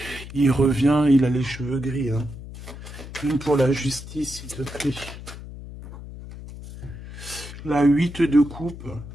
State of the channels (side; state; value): left; noise; hum, 13 dB below the sound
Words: il revient, il a les cheveux gris. Hein. Une pour la justice, s'il te plaît. La 8 de coupe.